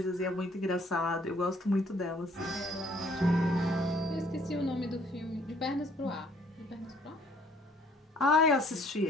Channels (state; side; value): normal; both; correlation 0.61